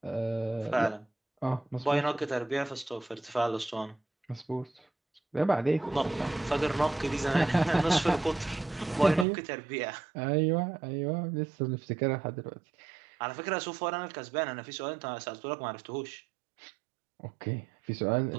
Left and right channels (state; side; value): drops out; left; at 9.2 s